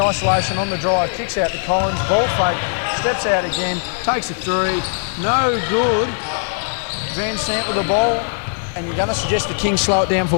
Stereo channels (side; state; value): right; silent; digital silence